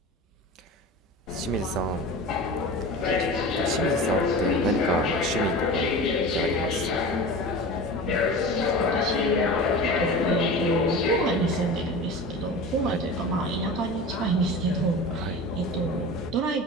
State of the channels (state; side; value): normal; both; correlation 0.32